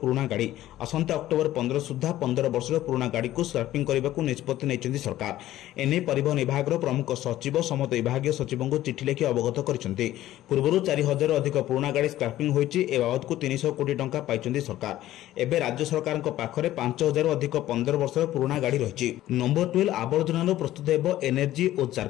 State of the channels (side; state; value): right; quieter; 14.3 dB